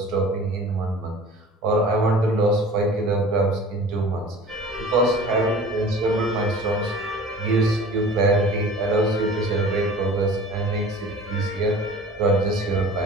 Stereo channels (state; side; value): normal; both; correlation 0.43